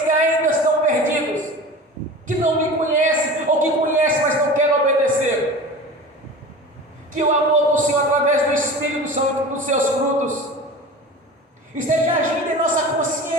que ainda estão perdidos, que não me conhecem, ou que conhecem, mas não querem obedecer. Que o amor do Senhor, através do Espírito Santo e dos Seus frutos, esteja agindo em nossa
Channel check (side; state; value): both; normal; correlation 0.35